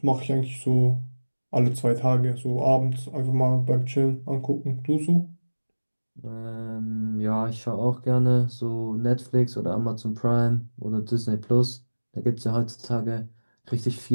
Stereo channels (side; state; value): both; inverted; correlation -1.00